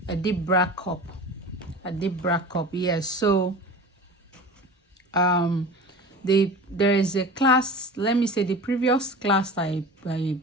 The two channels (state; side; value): normal; both; correlation 0.36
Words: deep bra cup. A deep bra cup, yes. So there is a class. Let me say the previous class I